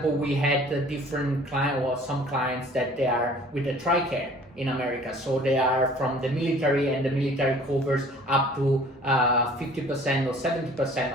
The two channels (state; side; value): normal; both; correlation 0.51